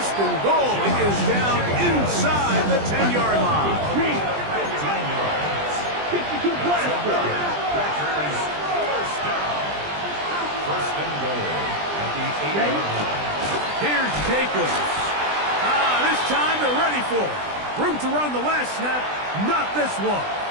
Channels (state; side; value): late; left; 20 ms